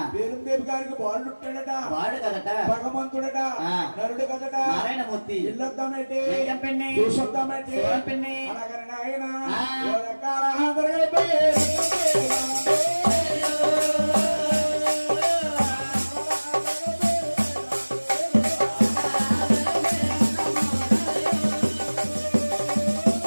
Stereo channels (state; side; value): inverted; both; correlation -1.00